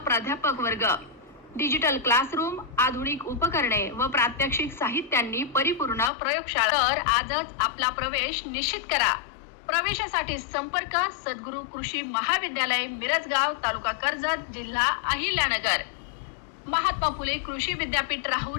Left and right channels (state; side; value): drops out; right; at 6.1 s